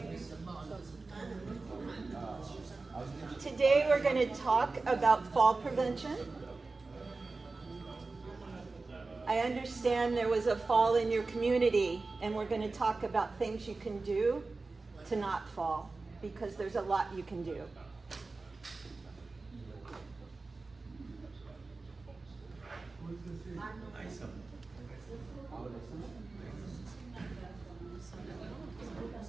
Today we're going to talk about fall prevention. I understand there was a fall in your community, and we're going to talk about things you can do to not fall, because there's a lot you can do.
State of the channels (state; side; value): quieter; left; 3.7 dB